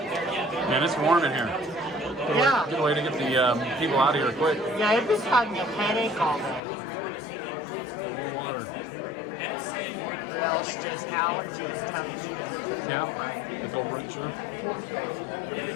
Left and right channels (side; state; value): right; drops out; at 6.6 s